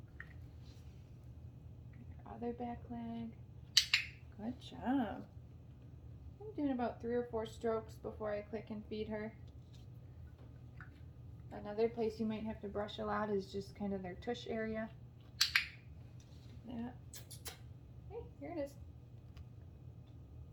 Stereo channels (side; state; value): both; identical; correlation 1.00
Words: Get her other back leg. Good job. I'm doing about 3 or 4 strokes before I click and feed her. Another place you might have to brush a lot is just kind of their tush area. That. Hey, here it is.